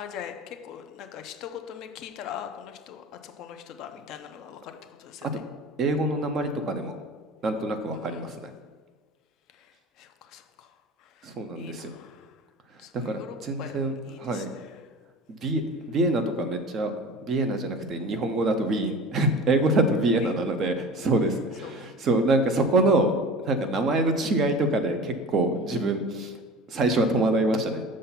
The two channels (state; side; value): normal; both; correlation 0.37